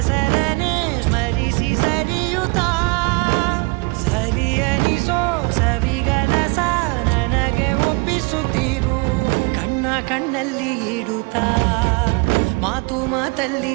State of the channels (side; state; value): left; quieter; 29.0 dB